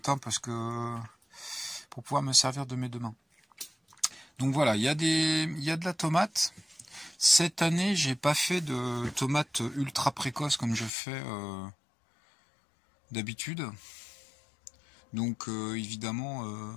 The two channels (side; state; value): right; drops out; at 10.9 s